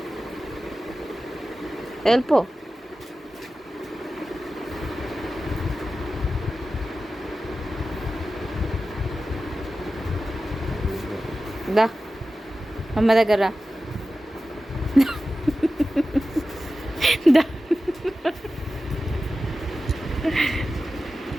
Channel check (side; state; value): both; normal; correlation 0.94